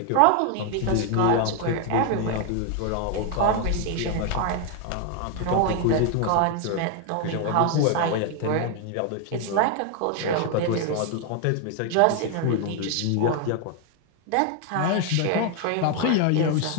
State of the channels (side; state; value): both; different; correlation 0.00